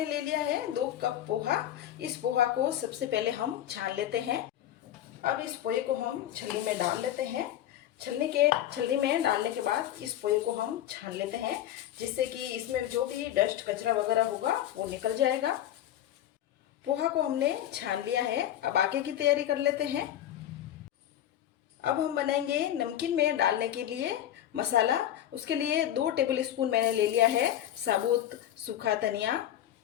ले लिया है 2 कप पोहा। इस पोहा को सबसे पहले हम छान लेते हैं। अब इस पोहे को हम छलनी में डाल लेते हैं। छलनी में डालने के बाद इस पोहे को हम छान लेते हैं, जिससे कि इसमें जो भी डस्ट कचरा वगैरह होगा वो निकल जाएगा। पोहा को हमने छान लिया है। अब आगे की तैयारी कर लेते हैं। अब हम बनाएंगे नमकीन में डालने के लिए मसाला। उसके लिए 2 टेबल स्पून मैंने ले लिया है साबुत सूखा धनिया।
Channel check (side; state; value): right; quieter; 11.8 dB